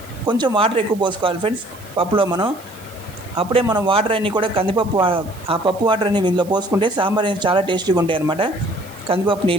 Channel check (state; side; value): noise; right; hiss, 22 dB below the sound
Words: కొంచెం వాటర్ ఎక్కువ పోసుకోవాలి ఫ్రెండ్స్ పప్పులో మనం. అప్పుడే మనం వాటర్ అన్నీ కూడా కందిపప్పు, ఆ పప్పు వాటర్ అన్ని ఇందులో పోసుకుంటే సాంబార్ అనేది చాలా టేస్టీగా ఉంటాయి అన్నమాట. కందిపప్పు